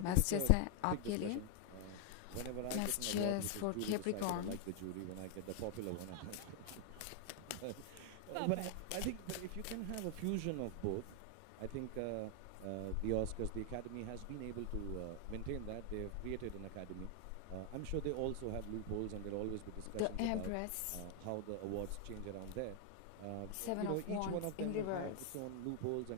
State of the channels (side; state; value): both; different; correlation 0.00